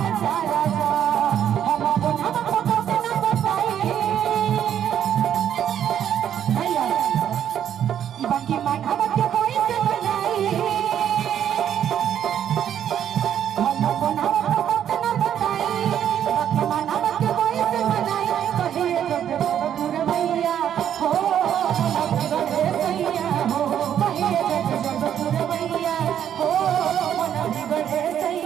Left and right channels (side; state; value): left; quieter; 9.7 dB